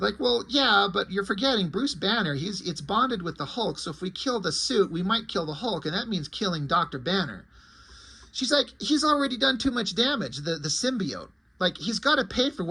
well, yeah, but you're forgetting Bruce Banner. It's bonded with the Hulk, so if we kill the suit, we might kill the Hulk, and that means killing Dr. Banner. She's like, he's already done too much damage, the symbiote. Like, he's got to pay for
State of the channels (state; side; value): identical; both; correlation 1.00